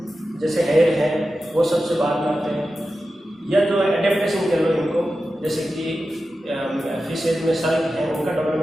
जैसे हेयर है वो सबसे बाद में आते हैं, या जो एडेप्टेशन कह लो इनको, जैसे कि फिशेज में सर्क हैं उनका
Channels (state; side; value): normal; both; correlation 0.92